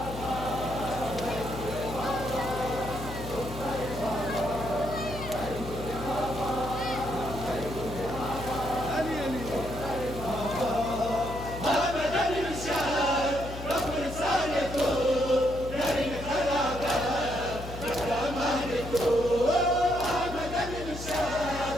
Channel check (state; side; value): noise; left; hum, 9 dB below the sound